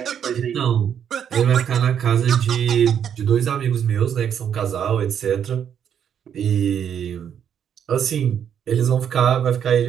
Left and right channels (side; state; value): left; quieter; 8.7 dB